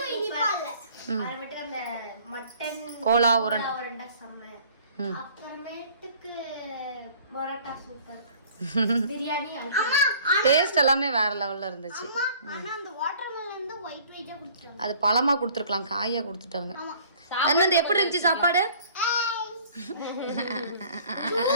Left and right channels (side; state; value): both; inverted; correlation -0.52